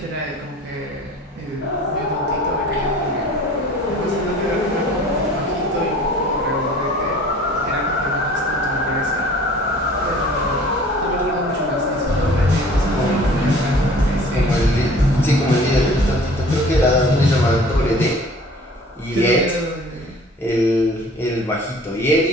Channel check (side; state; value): both; normal; correlation 0.48